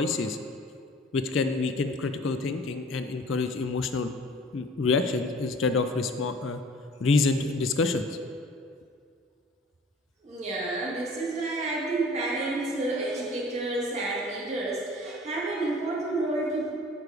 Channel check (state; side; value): normal; both; correlation 0.48